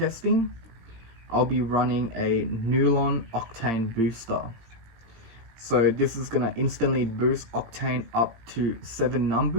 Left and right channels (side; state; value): left; late; 18 ms